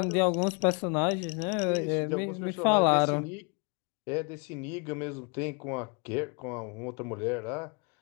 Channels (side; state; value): right; quieter; 34.5 dB